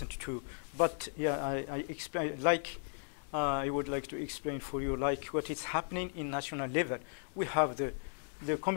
too, but yeah, I explain, I would like to explain for you, what is happening in national level. We have the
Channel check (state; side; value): silent; right; 54 dB below the other